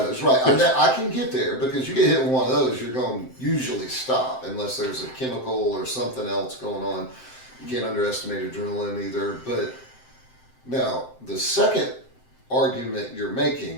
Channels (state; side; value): late; right; 7.7 ms